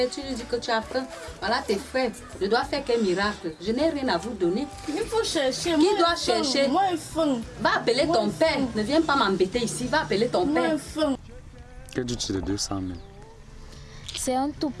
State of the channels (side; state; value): both; identical; correlation 1.00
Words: tu lui dis que tu as faim. Voilà tes frères. Je dois faire quel miracle? Je n'ai rien à vous donner. Il faut chercher. Qui doit chercher? Moi, j'ai faim. Va appeler ton père. Ne viens pas m'embêter ici. Va appeler ton Moi, père. j'ai faim. Que dis-tu de 200 000? C'est un tout